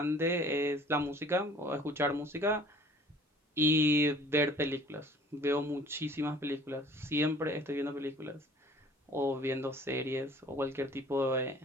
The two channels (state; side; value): normal; both; correlation 0.51